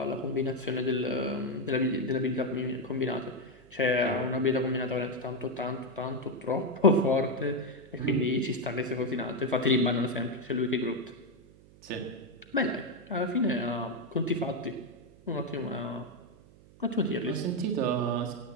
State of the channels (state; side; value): noise; right; hum, 24 dB below the sound